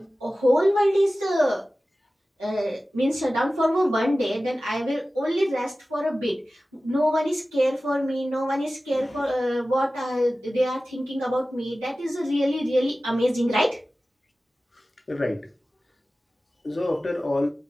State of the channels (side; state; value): both; normal; correlation 0.96